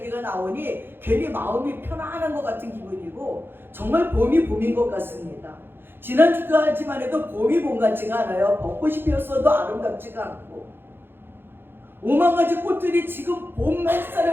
나오니 괜히 마음이 편안한 것 같은 기분이고 정말 봄이 봄인 것 같습니다. 지난주까지만 해도 봄이 봄 같지가 않아요. 벚꽃이 피었어도 아름답지가 않고 5만 가지 꽃들이 지금 봄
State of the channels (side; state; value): left; late; 0.10 ms